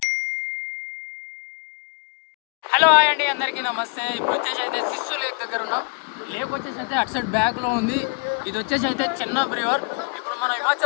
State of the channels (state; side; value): quieter; right; 35.4 dB